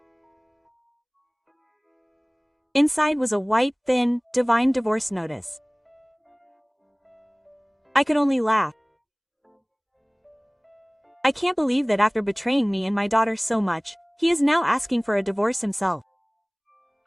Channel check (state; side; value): identical; both; correlation 1.00